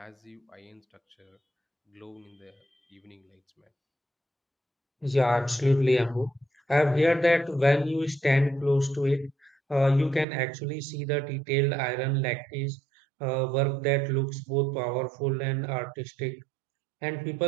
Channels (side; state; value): left; drops out; at 10.2 s